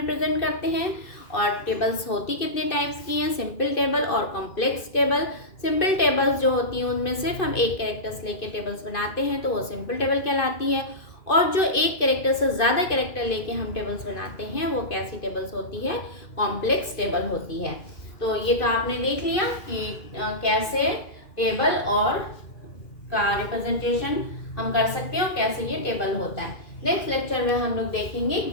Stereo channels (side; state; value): right; late; 2.5 ms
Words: करते हैं। और टेबल्स होती कितने टाइप्स की हैं, सिंपल टेबल और कॉम्प्लेक्स टेबल। सिंपल टेबल्स जो होती हैं उनमें सिर्फ हम एक कैरेक्टर्स लेके टेबल्स बनाते हैं तो वो सिंपल टेबल कहलाती है। और जो एक कैरेक्टर से ज़्यादा कैरेक्टर लेके हम टेबल्स बनाते हैं वो कैसी टेबल्स होती है, कॉम्प्लेक्स टेबल होती है। तो ये तो आपने देख लिया कि कैसे टेबल और का रिप्रेजेंटेशन हम कर सकते हैं और कैसे ये टेबल होता है। नेक्स्ट लेक्चर में हम लोग देखेंगे